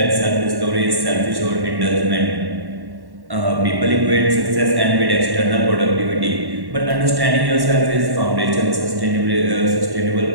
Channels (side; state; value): left; late; 1.1 ms